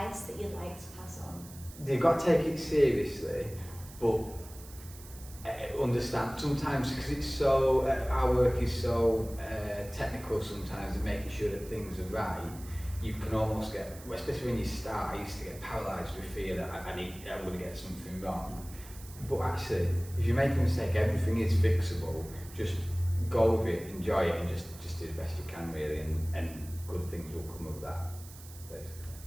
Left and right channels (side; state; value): right; noise; hiss, 18 dB below the sound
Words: that you'd like to pass on? You've got to take it seriously, but understand sometimes, because it's so our work is so technical sometimes, and making sure that things are right, you can almost get, especially when you start, I used to get paralysed with fear that I'm going to get something wrong. But actually, if you make a mistake, everything is fixable. Just go with it, enjoy it, and just do the best you can, really, and good things will come of that,